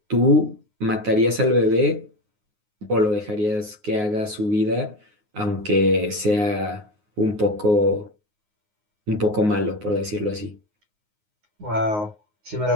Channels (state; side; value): late; left; 9.6 ms